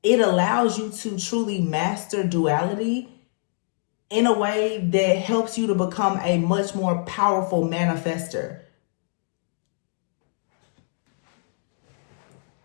it allows you to truly master duality in a way that helps you to become a much more powerful manifester.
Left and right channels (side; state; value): right; silent; digital silence